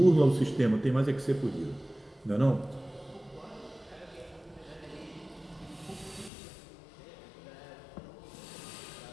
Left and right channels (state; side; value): drops out; right; at 6.3 s